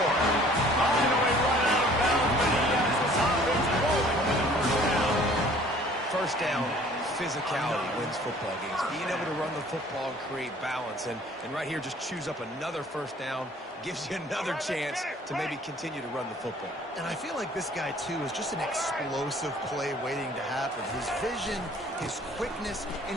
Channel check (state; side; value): normal; both; correlation 0.53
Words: On the way right out of bounds, but he has this offense rolling with a first down. First down, physicality wins football games. Being able to run the football and create balance. And right here, just choose up another first down, gives you another chance to maybe continue to run the football. And I feel like this guy, too, is just an explosive play waiting to happen. His vision, his quickness, and